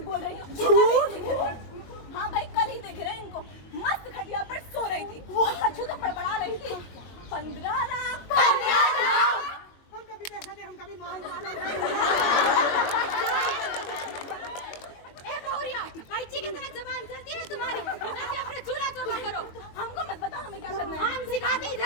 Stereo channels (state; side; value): late; right; 22 ms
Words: बोल रही हो? झूठ? हाँ भाई कल ही देख रहे हैं इनको, मस्त खटिया पर सो रही थी और कछु तो बड़बड़ा रही थी। 15 लाख। हम कभी पैसा दे, हम कभी माल मार। ए बहुरिया, कैची की तरह जबान चलती है तुम्हारी? जाके अपना चूल्हा चौका करो। हमको मत बता हमें क्या करना है। हम सिखाते